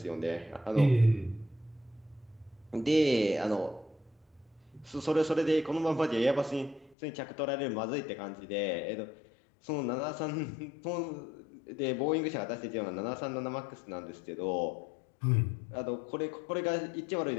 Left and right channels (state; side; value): drops out; right; at 7.0 s